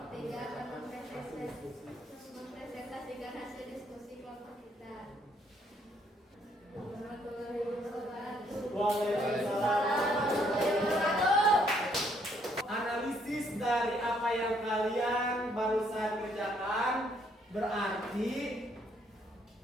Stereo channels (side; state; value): both; normal; correlation 0.68